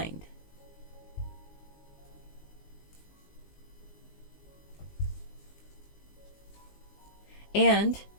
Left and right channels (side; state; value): right; late; 19 ms